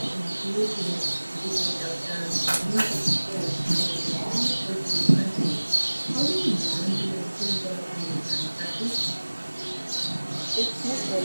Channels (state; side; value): inverted; both; correlation -1.00